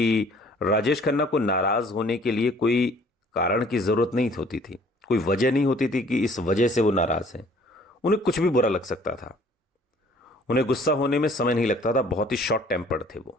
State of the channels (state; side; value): normal; both; correlation 0.56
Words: राजेश खन्ना को नाराज होने के लिए कोई कारण की जरूरत नहीं होती थी, कोई वजह नहीं होती थी कि इस वजह से वो नाराज हैं। उन्हें कुछ भी बुरा लग सकता था, उन्हें गुस्सा होने में समय नहीं लगता था, बहुत ही शॉर्ट टेम्पर्ड थे वो,